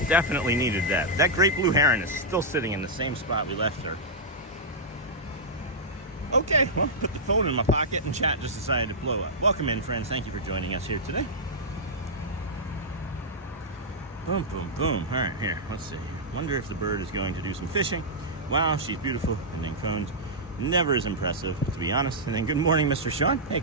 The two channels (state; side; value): normal; both; correlation -0.09